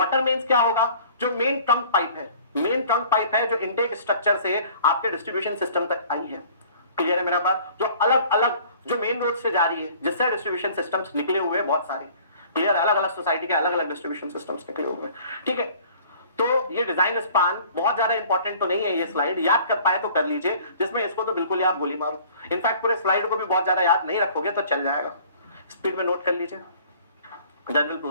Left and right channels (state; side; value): inverted; both; correlation -0.51